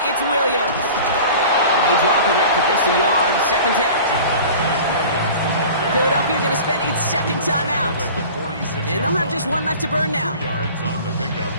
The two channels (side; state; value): both; inverted; correlation -0.40